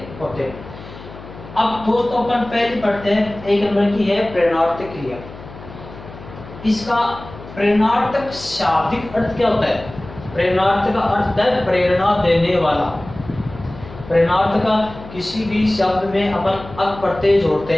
होते हैं। अब दोस्तों अपन पहले पढ़ते हैं, 1 नंबर की है प्रेरणार्थक क्रिया। इसका प्रेरणार्थक शाब्दिक अर्थ क्या होता है? प्रेरणार्थ का अर्थ है प्रेरणा देने वाला। प्रेरणार्थ का किसी भी शब्द में अपन अक प्रत्यय जोड़ते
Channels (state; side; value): noise; left; hum, 16 dB below the sound